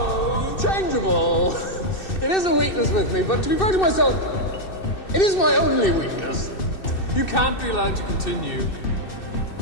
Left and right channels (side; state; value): right; late; 2.6 ms